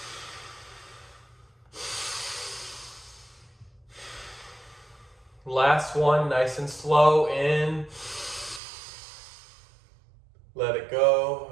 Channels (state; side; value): drops out; left; at 8.6 s